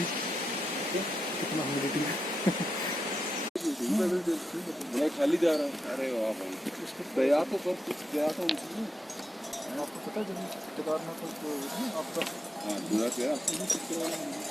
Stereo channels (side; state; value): both; normal; correlation 0.86